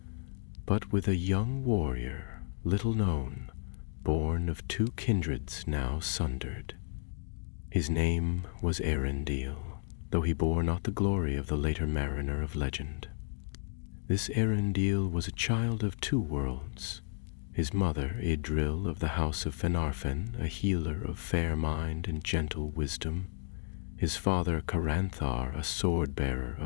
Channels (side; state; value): right; silent; digital silence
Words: but with a young warrior, little known, born of two kindreds now sundered. His name was Eärendil, though he bore not the glory of the later mariner of legend. This Eärendil was a child of two worlds. His mother, Idril of the House of Finarfin, a healer of fair mind and gentle wisdom. His father, Caranthar, a sword-bearer